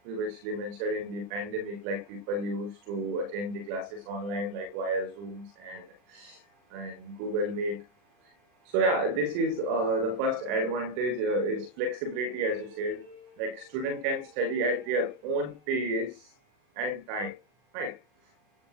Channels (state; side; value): late; left; 40 ms